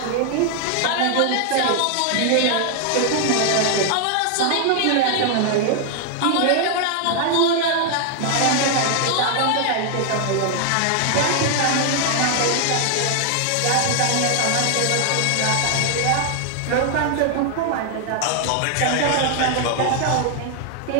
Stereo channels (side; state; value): both; different; correlation 0.00